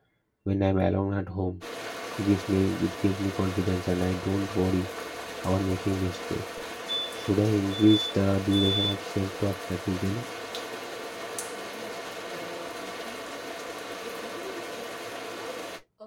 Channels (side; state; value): both; identical; correlation 1.00